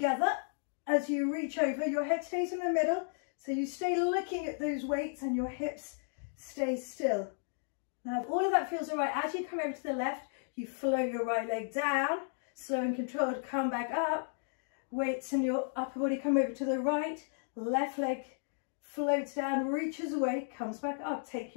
as you reach over. Your head stays in the middle, so you stay looking at those weights and your hips stay still. Now, if all of that feels all right, as you come over to the left, you flow your right leg down, slow and controlled, come back up. Weights in your upper body come over to the right. Left leg floats down, reaches away, comes back up. Take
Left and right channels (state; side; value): silent; right; digital silence